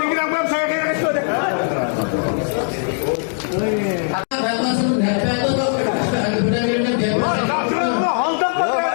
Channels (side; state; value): right; silent; 58 dB below the other